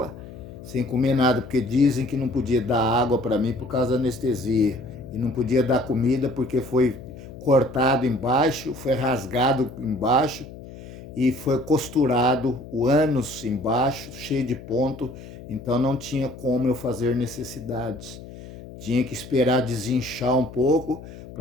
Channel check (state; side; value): noise; left; hum, 15 dB below the sound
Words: sem comer nada, porque dizem que não podia dar água para mim por causa da anestesia, e não podia dar comida porque foi cortado embaixo, foi rasgado embaixo, e foi costurado o ânus embaixo, cheio de ponto, então não tinha como eu fazer necessidades. Tinha que esperar desinchar um pouco